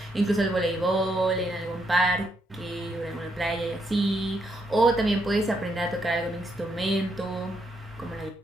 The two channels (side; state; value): both; normal; correlation 0.77